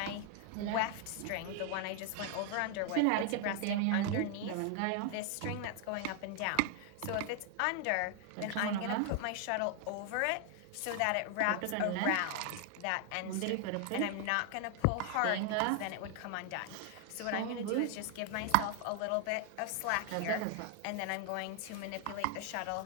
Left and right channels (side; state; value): both; different; correlation 0.00